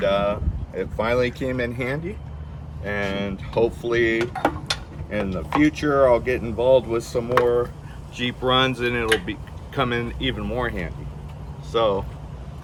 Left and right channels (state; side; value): identical; both; correlation 1.00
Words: it finally came in handy, and hopefully in the future I'll get involved with some more Jeep runs and it'll be come in even more handy. So